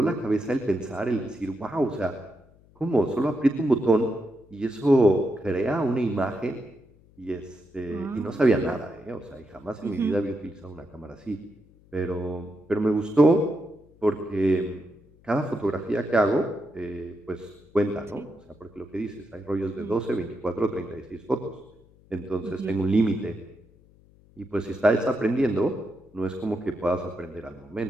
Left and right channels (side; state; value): left; noise; hum, 28 dB below the sound